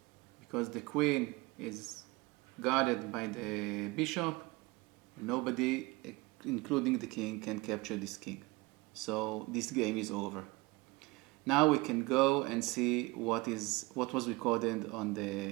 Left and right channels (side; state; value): left; quieter; 23.5 dB